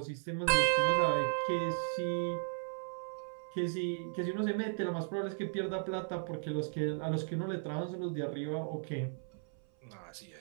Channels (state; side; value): silent; left; 54 dB below the other